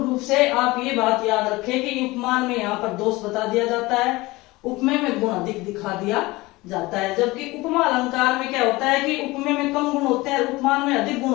रूप से आप ये बात याद रखें कि उपमान में यहाँ पर दोष बता दिया जाता है, उपमेय में गुण अधिक दिखा दिया जाता है। जबकि उपमा अलंकार में क्या होता है कि उपमेय में कम गुण होते हैं, उपमान में अधिक गुण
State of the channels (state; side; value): quieter; right; 21.1 dB